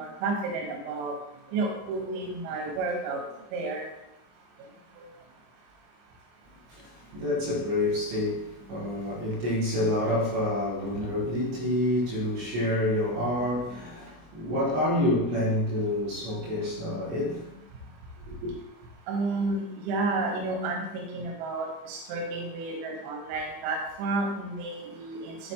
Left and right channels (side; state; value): left; late; 25 ms